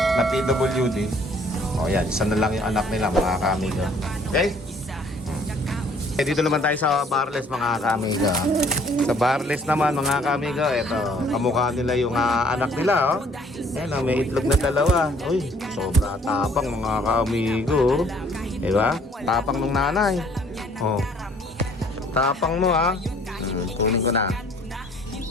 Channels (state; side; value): normal; both; correlation 0.59